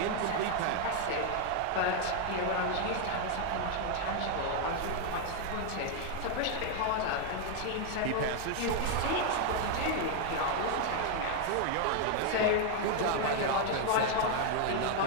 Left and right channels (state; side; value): different; both; correlation 0.00